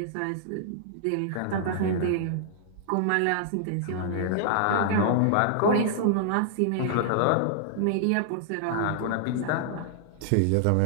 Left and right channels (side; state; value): both; different; correlation -0.01